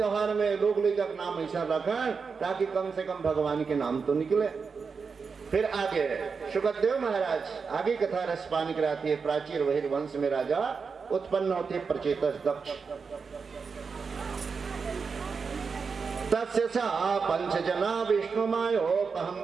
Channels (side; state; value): left; quieter; 5.3 dB